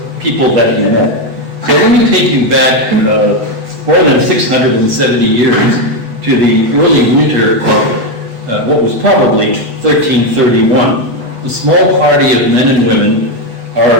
that he met. So let me take you back more than 670 years to the early winter of what was probably 1331. A small party of men and women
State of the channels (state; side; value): late; left; 8.1 ms